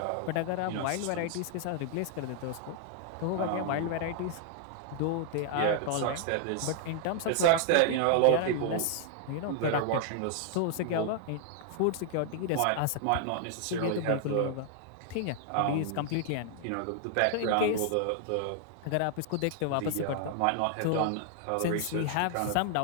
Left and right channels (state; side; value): different; both; correlation 0.00